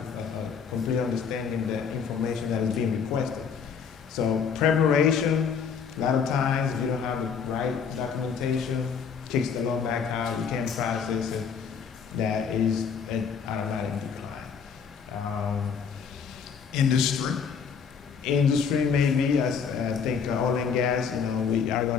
complete understanding of the information that is being requested. So preparation, a lot of times if you don't have the right documentation, kicks the loan back out, you can't process it, that is an automatic decline. Industry. Industry maybe, I think oil and gas, we are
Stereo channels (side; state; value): right; quieter; 6.5 dB